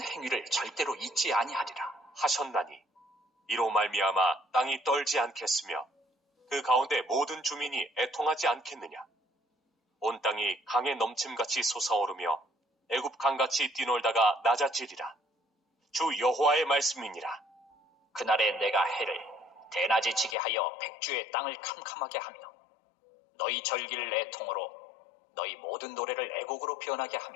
행위를 절대로 잊지 아니하리라 하셨나니 이로 말미암아 땅이 떨지 않겠으며 그 가운데 모든 주민이 애통하지 않겠느냐. 온 땅이 강에 넘침같이 솟아오르며 애굽 강같이 뛰놀다가 낮아지리라. 주 여호와의 말씀이니라. 그날에 내가 해를 대낮에 지게 하여 백주의 땅을 캄캄하게 하며 너희 절기를 애통으로 너희 모든 노래를 애곡으로 변하게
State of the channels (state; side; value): drops out; right; at 20.4 s